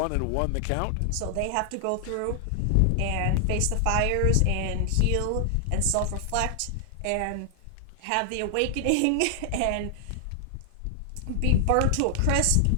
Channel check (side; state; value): both; different; correlation 0.00